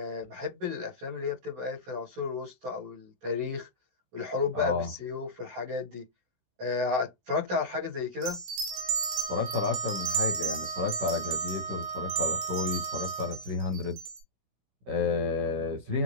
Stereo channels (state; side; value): late; left; 16 ms